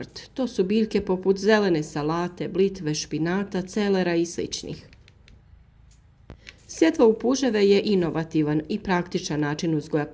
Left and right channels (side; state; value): both; identical; correlation 1.00